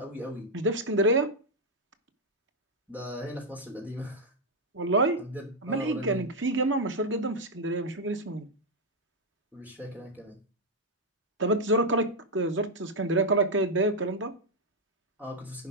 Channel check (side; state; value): both; normal; correlation -0.01